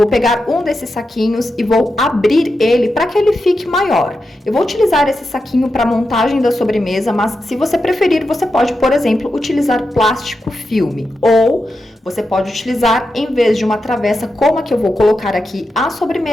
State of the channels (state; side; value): normal; both; correlation 0.88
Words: pegar um desses saquinhos e vou abrir ele para que ele fique maior. Eu vou utilizar esse saquinho para montagem da sobremesa, mas se você preferir, você pode, por exemplo, utilizar plástico filme ou Você pode utilizar, em vez de uma travessa como a que eu vou colocar aqui à